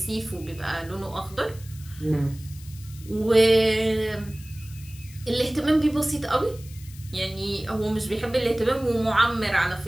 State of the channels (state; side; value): noise; left; hiss, 20 dB below the sound